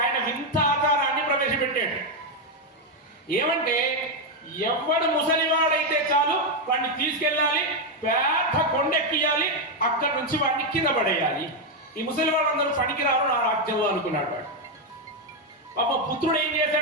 ఆయన వింత ఆచారాన్ని ప్రవేశపెట్టాడు. ఏమంటే, ఎవడు ముసలివాడైతే చాలు వాడిని తీసుకెళ్ళాలి, పెద్ద కొండెక్కియాలి, అక్కడి నుంచి వాడిని కింద పడేయాలి. ఈ ముసలివాళ్ళందరూ పనికిరారు నా రాజ్యంలో అనుకున్నాడు వాడు. పాప పుత్రుడు ఏం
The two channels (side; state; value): both; normal; correlation 0.04